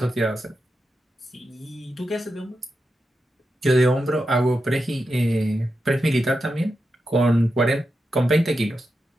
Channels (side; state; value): both; normal; correlation 0.88